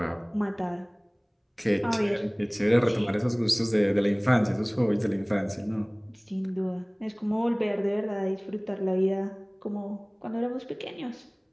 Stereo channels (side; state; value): both; identical; correlation 1.00